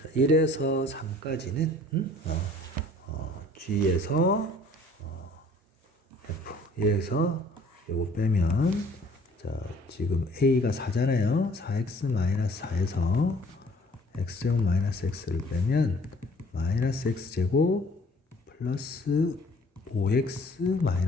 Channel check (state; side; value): normal; both; correlation 0.55